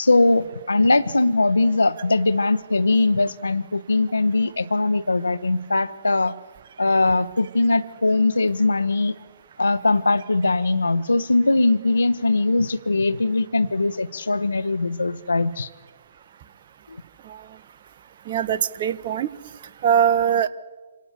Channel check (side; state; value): both; inverted; correlation -0.89